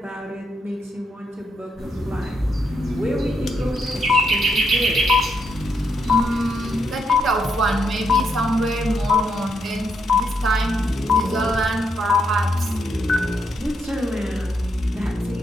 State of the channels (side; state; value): both; normal; correlation 0.78